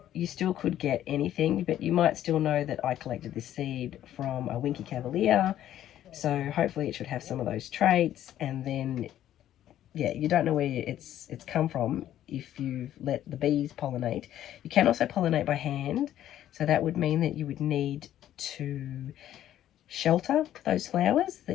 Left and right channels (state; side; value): quieter; right; 11.9 dB